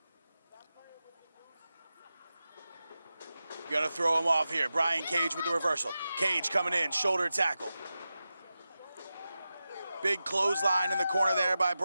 Gonna throw him off here. Brian Cage with the reversal. Cage coming in, shoulder tackle. Big clothesline in the corner there by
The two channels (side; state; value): both; inverted; correlation -0.93